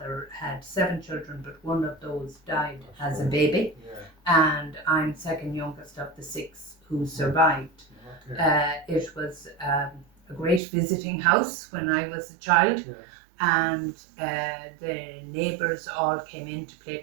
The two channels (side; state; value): left; drops out; at 10.6 s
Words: had 7 children, but one of those died as a baby, and I'm second youngest of the 6 who survived. It was a great visiting house when I was a child, and the neighbours all came in to play